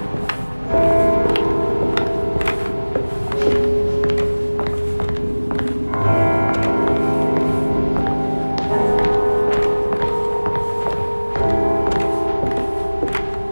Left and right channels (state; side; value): inverted; both; correlation -1.00